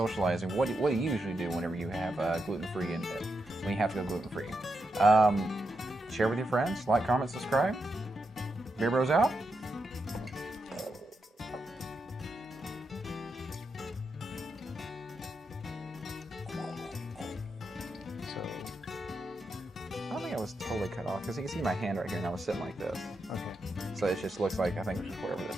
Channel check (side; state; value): both; normal; correlation 0.85